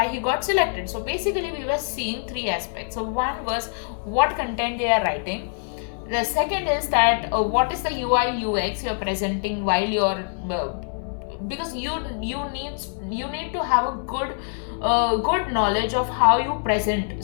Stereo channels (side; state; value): right; silent; 61 dB below the other